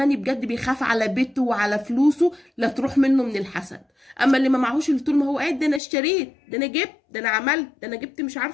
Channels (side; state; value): right; drops out; at 5.8 s